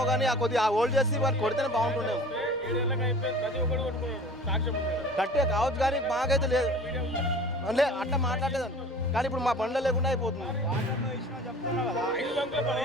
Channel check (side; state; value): both; normal; correlation 0.43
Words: కానీ ఆ కొద్దిగా హోల్డ్ చేసి వారు కొడితేనే బాగుంటుండేమో. కట్టే కావచ్చు కానీ మాకైతే లేదు అంటే అట్లా మాట్లాడలేదండి. కానీ ఇప్పుడు మా బండ్ల లేకుండా అయిపోతుంది.